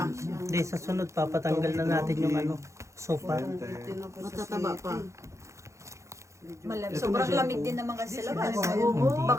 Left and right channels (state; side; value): late; left; 0.14 ms